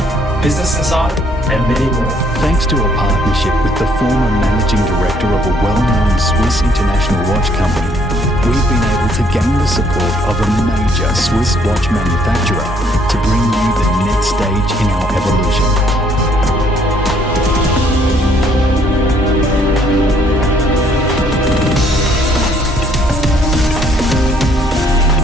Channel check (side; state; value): both; normal; correlation 0.65